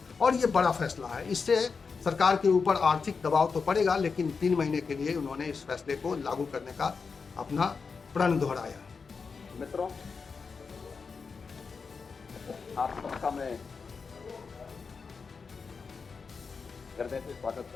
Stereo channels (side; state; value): right; quieter; 5.1 dB